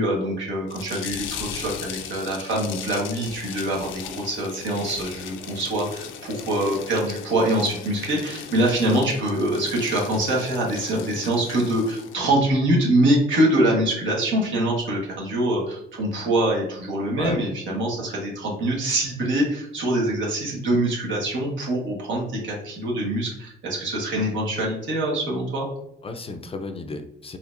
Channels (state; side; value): normal; both; correlation 0.46